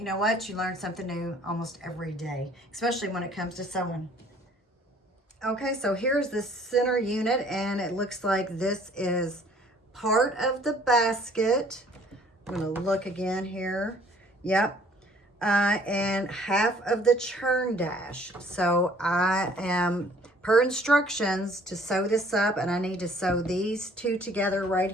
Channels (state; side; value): normal; both; correlation 0.57